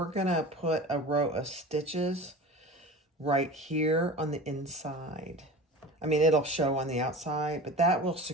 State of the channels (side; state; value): both; normal; correlation 0.35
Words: going to put a row of stitches right here on the inside. I mean, it'll show on the outside, but that will